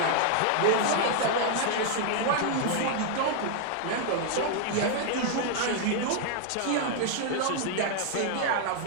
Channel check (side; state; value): both; different; correlation 0.00